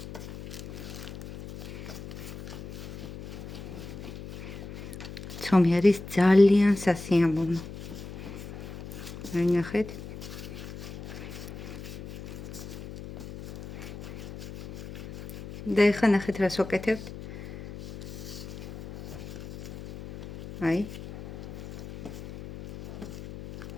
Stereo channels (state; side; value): noise; left; hum, 11 dB below the sound